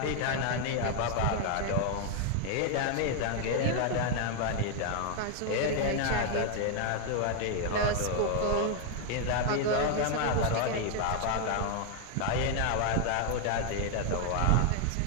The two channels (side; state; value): both; different; correlation 0.00